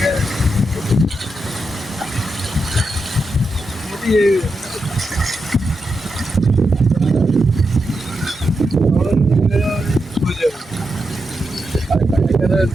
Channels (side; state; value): both; normal; correlation 0.86